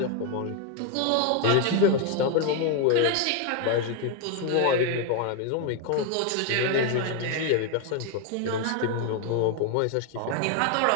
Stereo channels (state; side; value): different; both; correlation 0.01